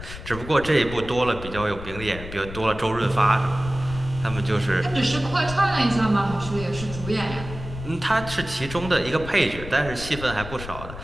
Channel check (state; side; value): noise; left; rumble, 11 dB below the sound